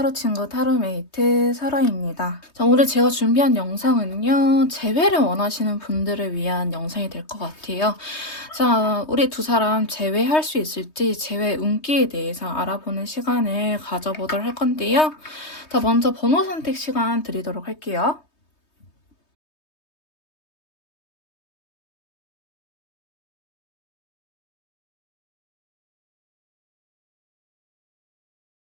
친구 타로메이트 설아입니다. 자, 오늘 제가 준비한 영상은요. 재회를 원하시는 분들을 위한 영상이 될 것 같아요. 자, 우리 두 사람 재회할 수 있을지 재회 운기에 대해서 알아보는 시간을 가져보도록 할 건데요. 자, 먼저 번호 선택 시간 드리도록 할게요.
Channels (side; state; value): right; late; 3.2 ms